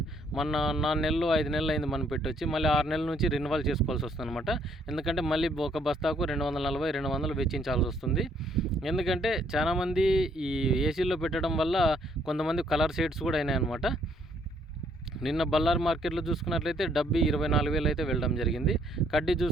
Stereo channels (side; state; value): both; normal; correlation 0.67